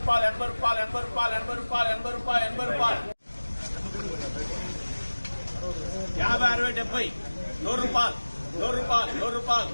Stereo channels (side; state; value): both; inverted; correlation -1.00